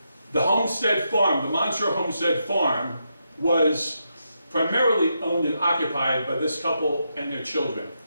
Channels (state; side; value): inverted; both; correlation -0.83